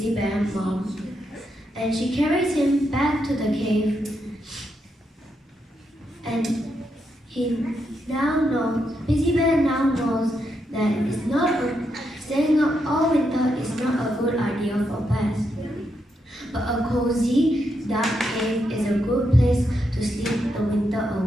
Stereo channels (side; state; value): both; normal; correlation 0.81